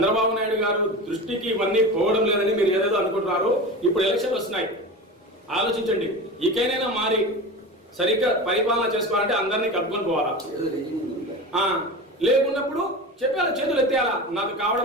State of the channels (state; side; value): normal; both; correlation 0.29